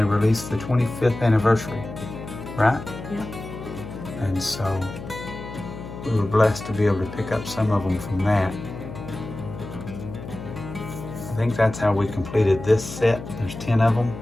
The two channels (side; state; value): left; noise; hum, 11 dB below the sound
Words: released the 25th anniversary, right? Yeah. And so we were blessed to be able to pick up some of them from that. I think that's how we completed this set. There's 10 of them.